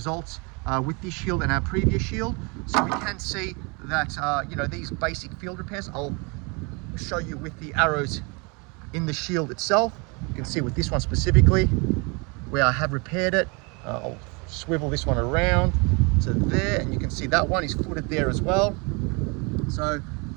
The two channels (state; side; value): quieter; left; 30.7 dB